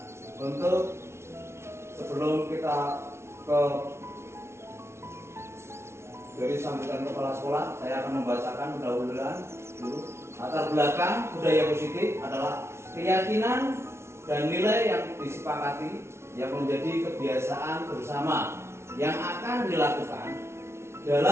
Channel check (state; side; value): late; left; 0.13 ms